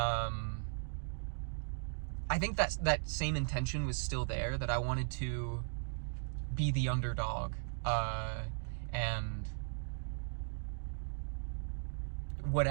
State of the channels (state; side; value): silent; left; digital silence